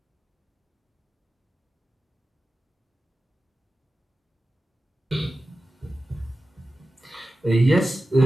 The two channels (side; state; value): both; normal; correlation 0.94